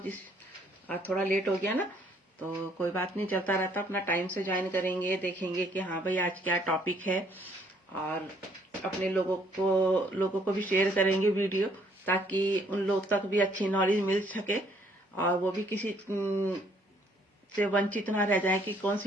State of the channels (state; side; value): normal; both; correlation 0.65